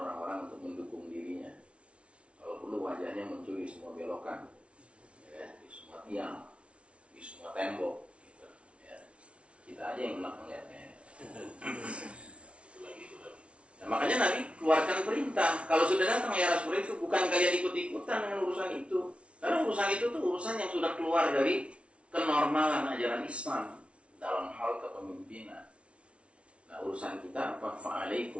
untuk mendukung dirinya. Kalau perlu wajahnya muncul di semua belokan, ya, di semua tiang, di semua tembok. Gitu, ya. Kita aja yang enak melihatnya. Nah, makanya Nabi keluarkan perintah. Kalau sudah datang era seperti itu, bukan kalian ikut-ikutan dengan urusan itu. Karena urusan itu tuh urusan yang sudah keluar dari kenormalan ajaran Islam dalam hal kepemimpinan. Nah, urusan kita apa?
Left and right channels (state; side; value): late; left; 0.060 ms